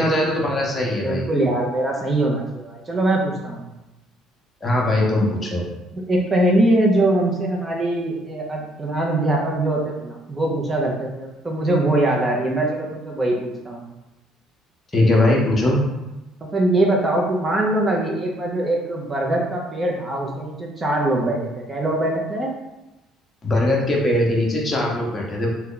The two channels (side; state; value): both; normal; correlation 0.68